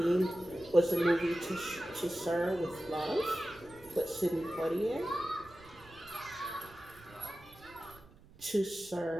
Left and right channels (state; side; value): noise; right; rumble, 23 dB below the sound